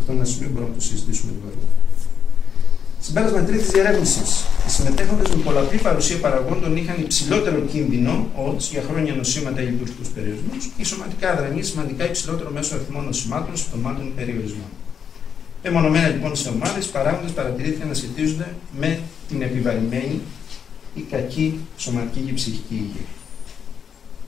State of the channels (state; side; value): quieter; right; 7.4 dB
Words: είναι ένα σημείο που μπορούμε να το συζητήσουμε λίγο αργότερα. Συμπέρασμα τρίτης διερεύνησης. Οι συμμετέχοντες με πολλαπλή παρουσία παραγόντων είχαν υψηλότερο κίνδυνο odds για χρόνια νοσήματα ή λειτουργικούς περιορισμούς ή σωματικά αδρανή σημαντικά υψηλότερο μέσο αριθμό νοσημάτων, συμπτωμάτων ή περιορισμών. Μεμονωμένα λοιπόν σε ομάδες, οι παράγοντες παρατηρήθηκαν να σχετίζονται με την επιβαρημένη η κακή σωματική και ψυχική υγεία.